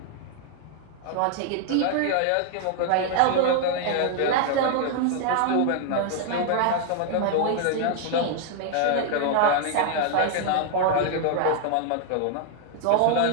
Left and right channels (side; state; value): both; different; correlation 0.00